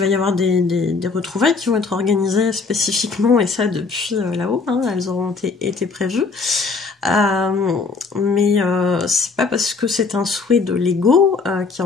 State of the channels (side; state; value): right; quieter; 4.4 dB